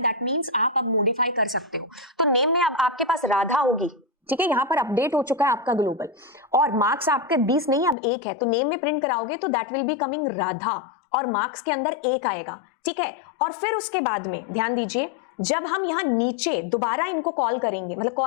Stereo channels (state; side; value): drops out; right; at 8.0 s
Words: मींस आप अब मॉडिफाई कर सकते हो। तो नेम में अब आपके पास राधा होगी, ठीक है, यहां पर अपडेट हो चुका है आपका ग्लोबल, और मार्क्स आपके 20 नहीं अब 1 है, तो नेम में प्रिंट कराओगे तो that will be coming Radha, और मार्क्स के अंदर 1 आएगा, ठीक है। और फिर उसके बाद में ध्यान दीजिए, जब हम यहां नीचे दोबारा इनको कॉल करेंगे, मतलब